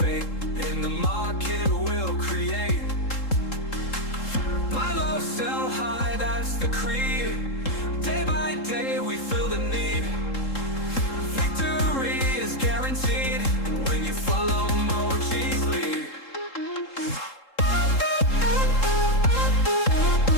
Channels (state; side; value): late; right; 3.7 ms